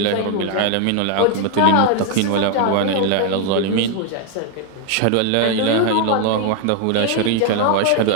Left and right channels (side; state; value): both; different; correlation 0.01